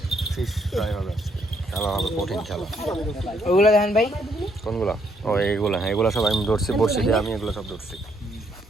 ফিশ ফ্রাই হবে আজকে, খেলা হবে কঠিন খেলা। ওগুলো দেখেন ভাই, কোনগুলা? ও এইগুলা, হ্যাঁ এগুলো সব আমি ধরছি, বড়শি দিয়ে আমি এগুলো সব ধরছি।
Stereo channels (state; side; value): normal; both; correlation 0.72